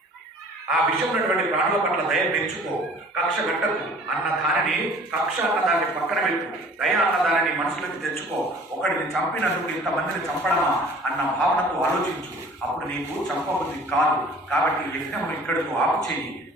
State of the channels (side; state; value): both; normal; correlation 0.49